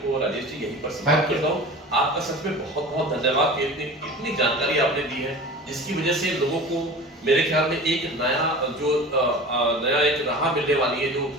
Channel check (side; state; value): both; normal; correlation 0.36